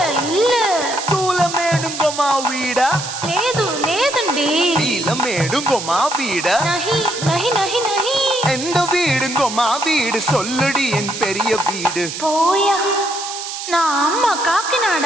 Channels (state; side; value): noise; right; hiss, 7 dB below the sound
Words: இல்ல తూల మేడుంగోమా వీడ లేదు లేదండి నీల మేడుంగోమా వీడ நஹி நஹி நஹி நஹி எந்த வீடுங்கோமா வீடு சொல்லுடி என் பெரிய வீடு போயா நான் அம்மா